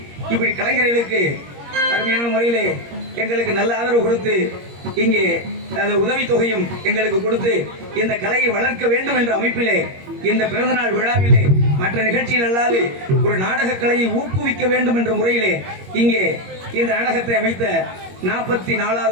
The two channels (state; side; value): late; left; 21 ms